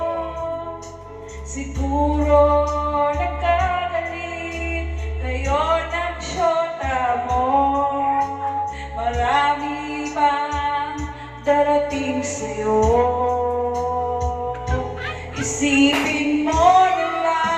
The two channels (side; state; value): both; identical; correlation 1.00